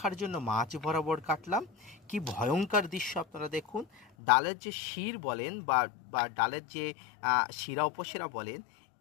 জন্য মাঝ বরাবর কাটলাম। কি ভয়ঙ্কর দৃশ্য আপনারা দেখুন। ডালের যে শির বলেন বা ডালের যে শিরা উপশিরা বলেন,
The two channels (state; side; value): drops out; right; at 4.0 s